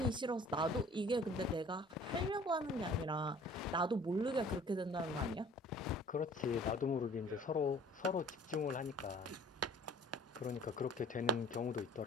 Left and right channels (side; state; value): both; normal; correlation 0.50